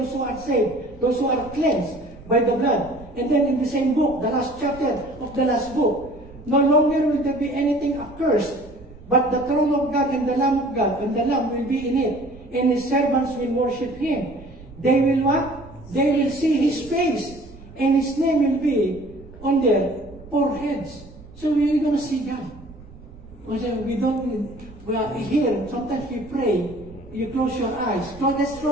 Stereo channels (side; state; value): right; noise; rumble, 19 dB below the sound